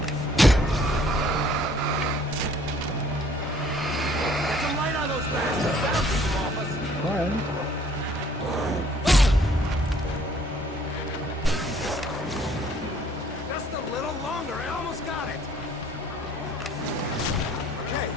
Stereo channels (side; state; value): both; normal; correlation 0.58